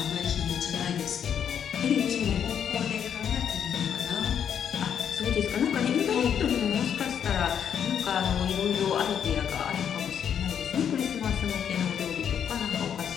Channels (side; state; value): right; quieter; 8.4 dB